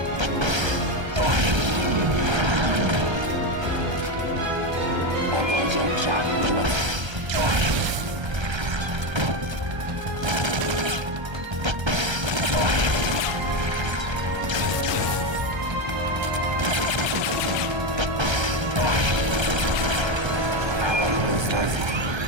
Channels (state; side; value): late; left; 1.3 ms